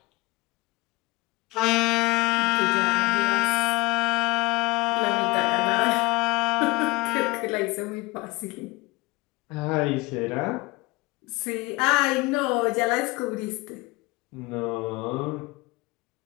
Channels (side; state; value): right; quieter; 22.4 dB